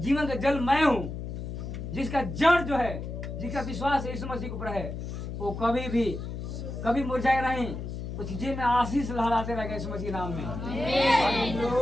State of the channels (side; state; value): left; noise; hum, 6 dB below the sound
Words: का जल मैं हूँ, जिसका जड़ जो है, जिसका विश्वास यीशु मसीह के ऊपर है, वो कभी मुरझाए नहीं। उस जी में आशीष लहराते रहेगा यीशु मसीह के नाम में।